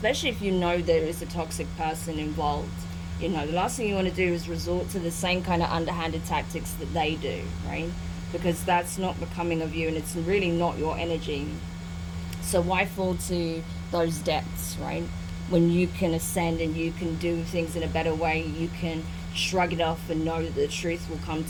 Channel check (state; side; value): identical; both; correlation 1.00